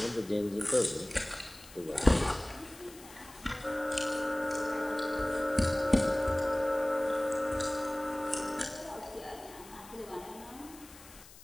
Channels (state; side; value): noise; left; hiss, 20 dB below the sound